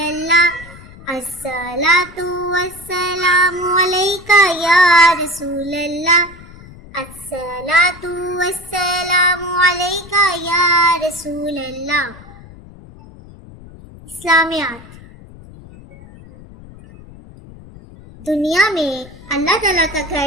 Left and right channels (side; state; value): left; noise; rumble, 19 dB below the sound